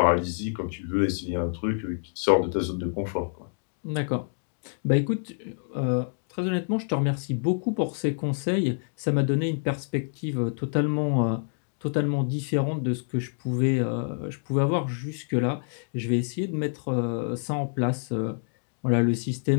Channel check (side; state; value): right; silent; digital silence